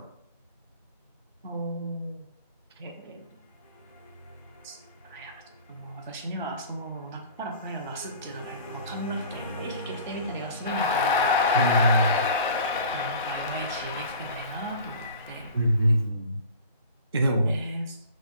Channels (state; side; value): inverted; both; correlation -0.43